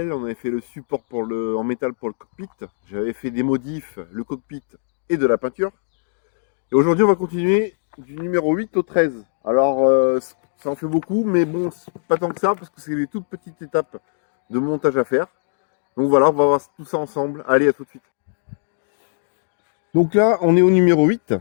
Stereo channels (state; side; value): silent; right; digital silence